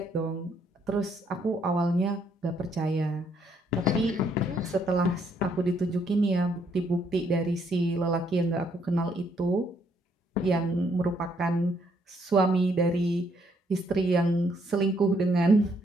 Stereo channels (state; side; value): normal; both; correlation 0.70